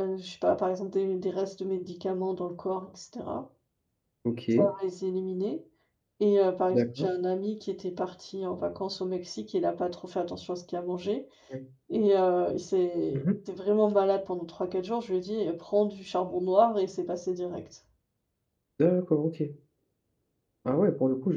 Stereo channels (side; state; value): both; identical; correlation 1.00